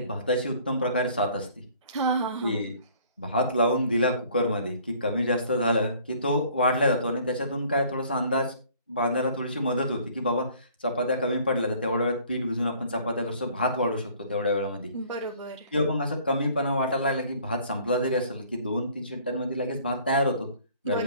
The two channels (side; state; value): both; inverted; correlation -0.56